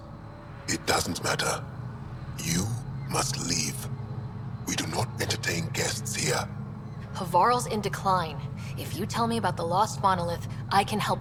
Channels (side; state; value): both; identical; correlation 1.00